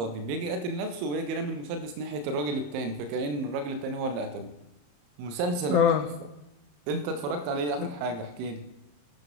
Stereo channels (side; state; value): left; late; 34 ms